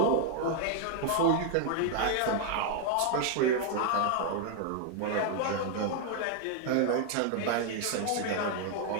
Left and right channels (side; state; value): both; different; correlation 0.00